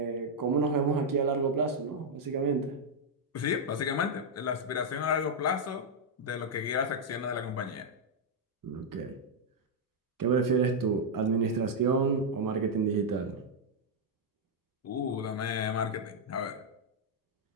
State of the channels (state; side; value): normal; both; correlation -0.03